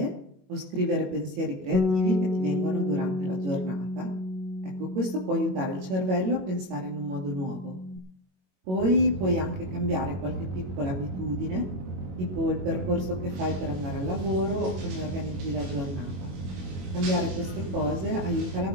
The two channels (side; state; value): left; late; 22 ms